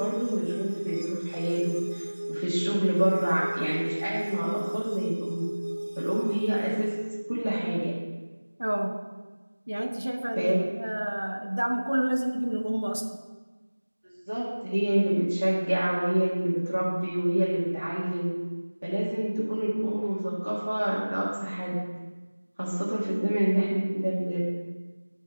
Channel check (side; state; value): both; inverted; correlation -1.00